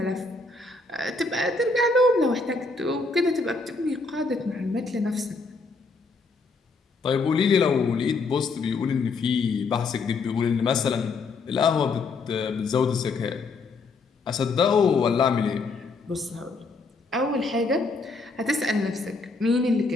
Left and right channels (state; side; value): quieter; right; 3.9 dB